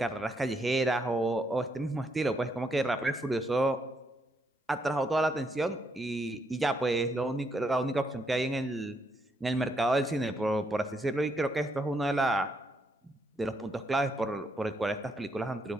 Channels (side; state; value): both; normal; correlation 0.76